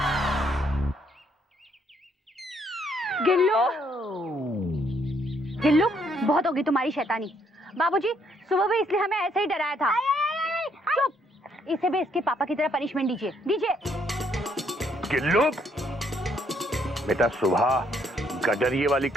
गिल्लू, बहुत होगी तुम्हारी शैतानी। बाबूजी, सुबह भी इसलिए हमें ऐसे ही डराया था। चुप, इसे भी इसके पापा की तरह पनिशमेंट दीजिए। गिल्लू बेटा, सुबह गडरिये वाली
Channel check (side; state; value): both; normal; correlation 0.70